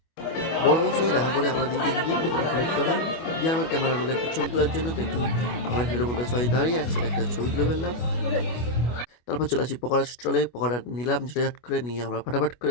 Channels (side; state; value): right; late; 25 ms